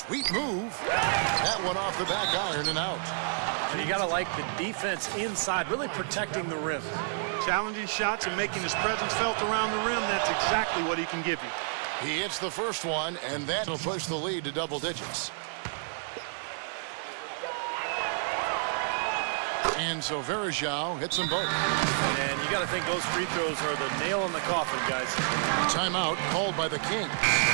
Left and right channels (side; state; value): left; silent; 58 dB below the other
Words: move. That one off the back iron and out. And you got to like the defense inside, really protecting the rim. Challenging shots and making his presence felt around the rim, that's exactly what he can give you. He hits the first one, and that will push the lead to double digits. And so Verajao hits them both. And you got to think those free throws are the nail in the coffin, guys. Timeout called by the Kings.